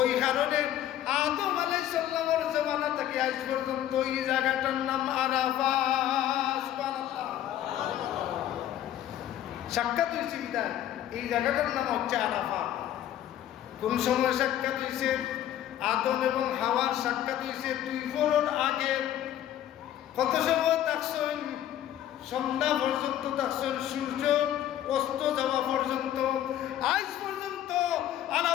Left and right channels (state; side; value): quieter; right; 11.8 dB